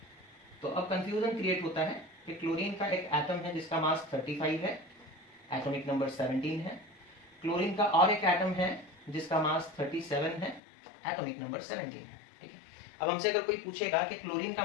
तो अब कंफ्यूजन क्रिएट होता है कि क्लोरीन का एक एटम है जिसका मास 35 है, एटॉमिक नंबर 17 है। क्लोरीन का और एक एटम है जिसका मास 37 है, एटॉमिक नंबर 17 है, ठीक है। अब हमसे अगर कोई पूछेगा कि क्लोरीन का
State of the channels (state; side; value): drops out; right; at 10.6 s